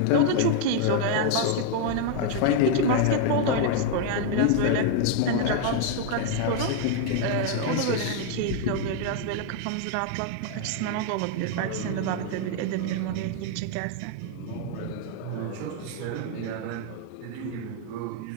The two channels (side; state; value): both; different; correlation 0.00